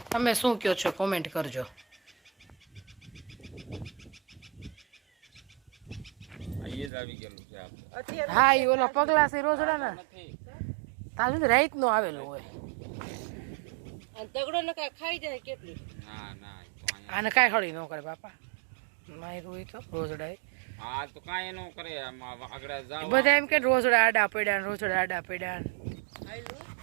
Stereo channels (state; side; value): drops out; left; at 6.9 s